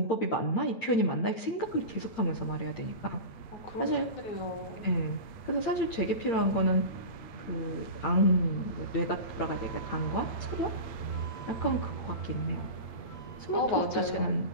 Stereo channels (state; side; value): late; right; 8.9 ms